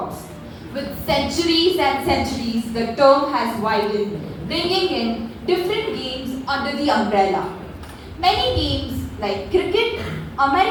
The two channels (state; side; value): identical; both; correlation 1.00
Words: With centuries and centuries, the term has widened, bringing in different games under the umbrella. Many games like cricket,